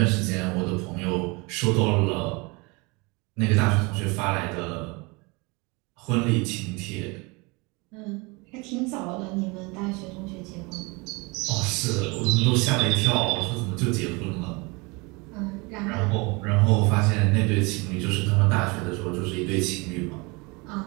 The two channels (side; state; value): left; quieter; 27.3 dB